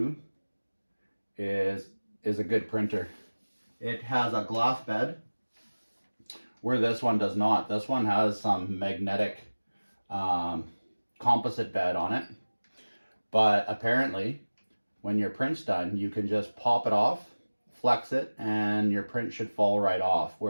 is a good printer. It has a glass bed, where this one does not. This one has some magnetic composite bed on it, but apparently when your print's done, you can just pop it off, flex it, and your print should fall right off.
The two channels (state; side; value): inverted; both; correlation -1.00